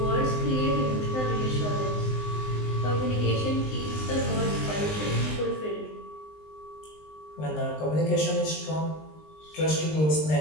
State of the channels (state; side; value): late; right; 19 ms